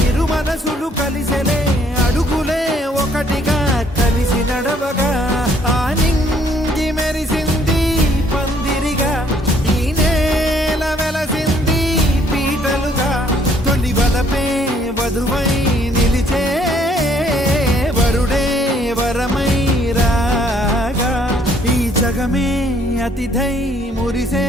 ఇరు మనసులు కలిసెలే అడుగులే ఒకటిగా కలిసి నడవగా ఆ నింగి మెరిసింది పందిరిగా ఈ నేల వెలసింది పీటలుగా తొలి వలపే వధువై నిలిచే వరుడే వరమై రాగా ఈ జగమే అతిథై మురిసే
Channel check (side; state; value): both; normal; correlation 0.64